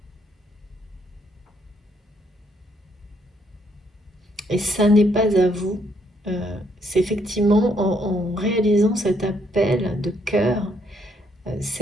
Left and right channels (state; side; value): normal; both; correlation 0.71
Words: Et ça n'est pas à vous. C'est effectivement en réalisant cet appel de cœur,